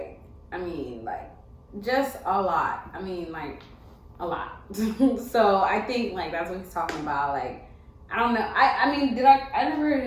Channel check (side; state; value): both; identical; correlation 1.00